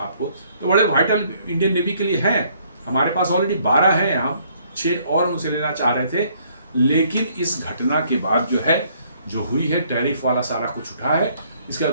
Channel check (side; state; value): both; inverted; correlation -0.65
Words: तो बड़े वाइटल इंडियन नेवी के लिए हैं। हमारे पास ऑलरेडी 12 हैं, हम 6 और उनसे लेना चाह रहे थे, लेकिन इस घटना के बाद जो है जो हुई है, टैरिफ वाला सारा कुछ उठा है, इसके